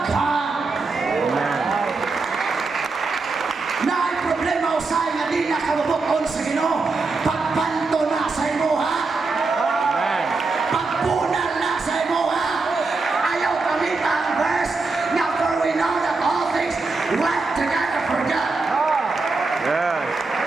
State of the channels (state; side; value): quieter; left; 3.9 dB